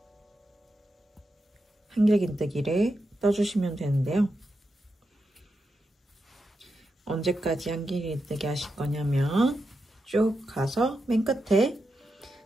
한길긴뜨기를 떠주시면 되는데요. 언제까지 한길긴뜨기 하실 거냐면 쭉 가서 맨 끝에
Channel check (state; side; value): normal; both; correlation 0.87